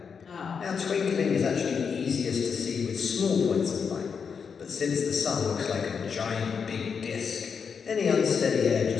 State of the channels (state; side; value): quieter; right; 6.2 dB